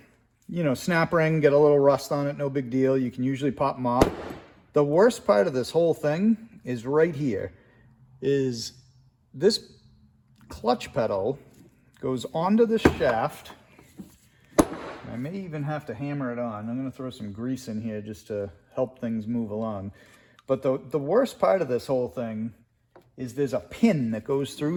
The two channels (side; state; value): both; identical; correlation 1.00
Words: you know, snap ring, get a little rust on it, no big deal. You can usually pop them off. The worst part of this whole thing is right here, is this clutch pedal goes onto this shaft. I may even have to hammer it on. I'm going to throw some grease in here just to help things move along. But the worst part of this whole thing is there's a pin that goes through